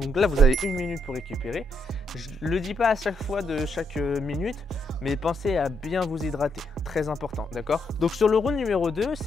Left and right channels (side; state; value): both; normal; correlation 0.76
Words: là, vous avez 1 minute pour récupérer. Je ne le dis pas à chaque fois de chaque minute, mais pensez à bien vous hydrater. Très important, d'accord? Donc sur le round numéro 2,